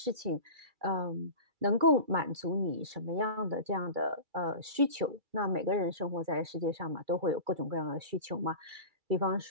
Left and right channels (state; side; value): late; left; 2.3 ms